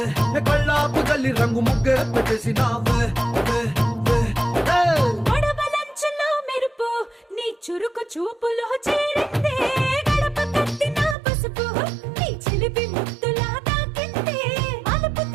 కళ్ళాపు గల్లి రంగు ముగ్గే పెట్టేసినావే మెరుపు నీ చురుకు చూపులో చేరిందే గడప కట్టిన పసుపు నీ చిలిపి ముద్దులో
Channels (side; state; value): left; drops out; at 11.2 s